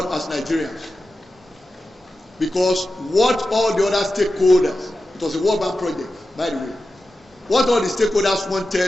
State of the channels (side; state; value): both; normal; correlation 0.92